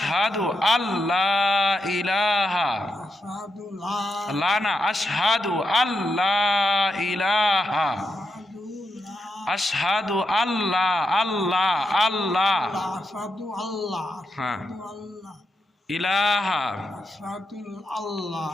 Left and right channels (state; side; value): normal; both; correlation 0.85